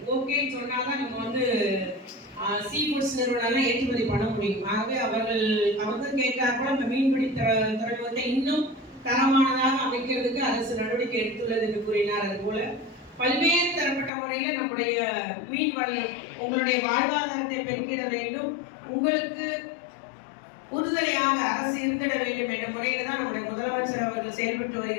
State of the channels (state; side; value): drops out; right; at 14.1 s